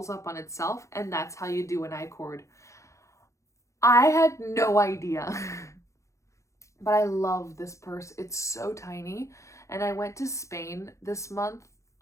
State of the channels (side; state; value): right; late; 0.15 ms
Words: up on itself, and that's how you do an I-cord. I had no idea. But I love this purse. It's so tiny. And I went to Spain this month